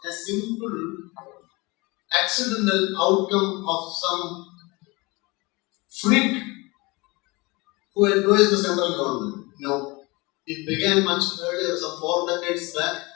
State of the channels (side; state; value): right; quieter; 24.9 dB